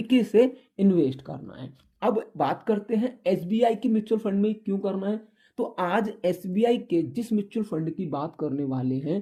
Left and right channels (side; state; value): both; identical; correlation 1.00